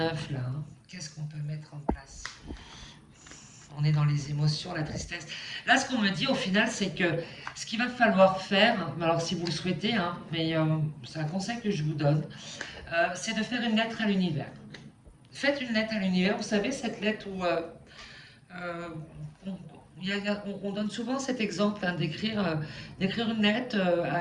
Hein. Qu'est-ce qu'on peut mettre en place? On est dans les émotions, la tristesse. Là, ce qu'on me dit au final, c'est que ce qu'il va falloir faire, alors si vous le souhaitez, hein, mais c'est un conseil que je vous donne, c'est de faire une lettre à l'univers. Faites une lettre à l'univers, vous savez, cette lettre où euh, on, on donne souvent cet exemple hein, d'écrire une lettre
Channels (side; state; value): both; identical; correlation 1.00